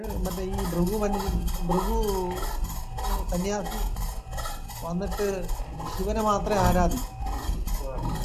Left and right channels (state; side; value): identical; both; correlation 1.00